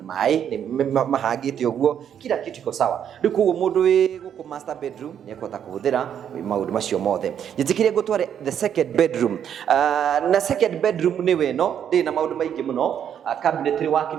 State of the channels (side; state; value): left; quieter; 9.0 dB